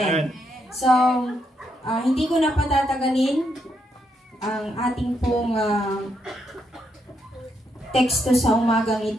So, hindi ko na patatagalin ang ating pong teksto sa umagang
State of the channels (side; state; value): both; normal; correlation 0.78